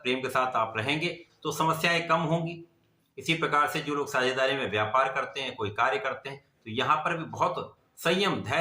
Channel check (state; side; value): identical; both; correlation 1.00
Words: के साथ आप रहेंगे तो समस्याएं कम होंगी। इसी प्रकार से जो लोग साझेदारी में व्यापार करते हैं, कोई कार्य करते हैं, तो यहाँ पर भी बहुत संयम